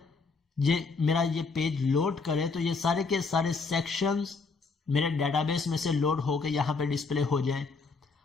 मेरा ये पेज लोड करे तो ये सारे के सारे सेक्शंस मेरे डेटाबेस में से लोड होकर यहाँ पे डिस्प्ले हो जाएं।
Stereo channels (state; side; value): quieter; right; 4.4 dB